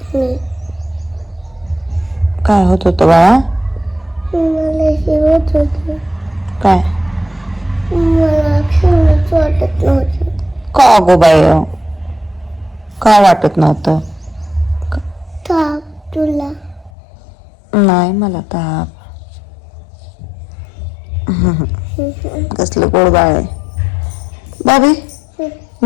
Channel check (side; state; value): right; drops out; at 16.9 s